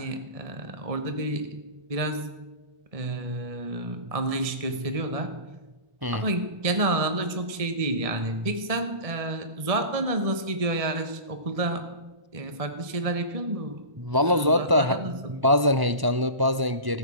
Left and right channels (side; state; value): left; late; 1.0 ms